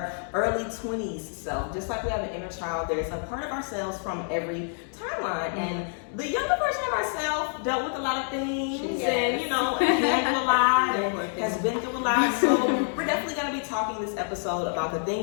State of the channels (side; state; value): right; silent; 60 dB below the other